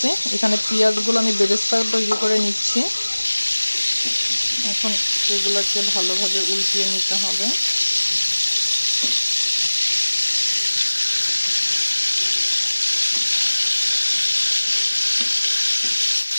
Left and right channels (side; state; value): both; inverted; correlation -1.00